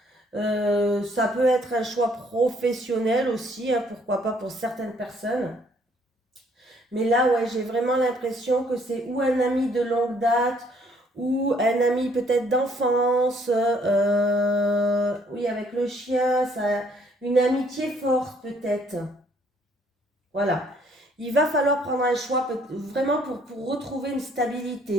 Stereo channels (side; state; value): both; normal; correlation 0.64